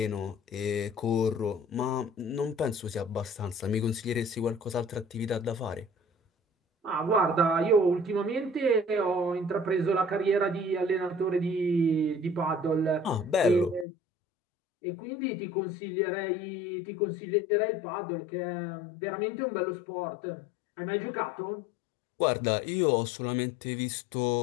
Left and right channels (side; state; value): right; drops out; at 13.9 s